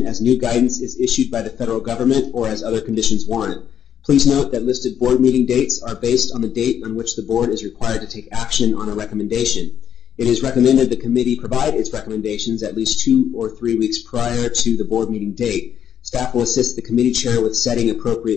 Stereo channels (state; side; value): quieter; right; 9.2 dB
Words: as new guidance is issued by the federal government or as other conditions warrant. Please note that listed board meeting dates are based on the date on which the board is required to take action on a recommendation. It is recommended the committee provide its recommendations at least 2 or 3 weeks prior to the board meeting date. Staff will assist the committee chair with setting